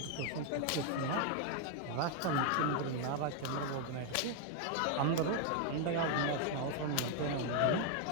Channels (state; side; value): different; both; correlation 0.01